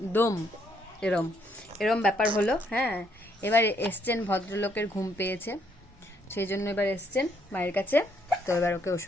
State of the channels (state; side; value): normal; both; correlation 0.71